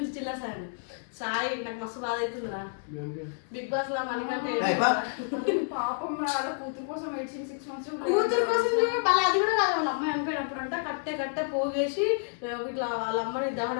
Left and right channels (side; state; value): right; silent; 58 dB below the other